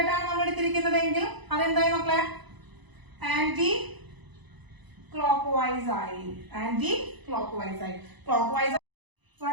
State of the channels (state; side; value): late; left; 1.0 ms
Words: ആണ് നമ്മൾ എടുത്തിരിക്കുന്നതെങ്കിൽ അതെന്തായി മക്കളെ? ആന്റി ക്ലോക്ക് വൈസ് ആയി.